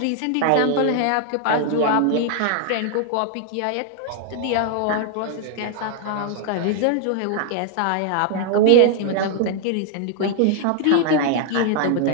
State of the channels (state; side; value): different; both; correlation 0.00